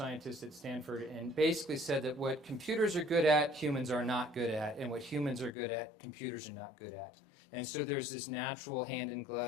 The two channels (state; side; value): drops out; right; at 5.6 s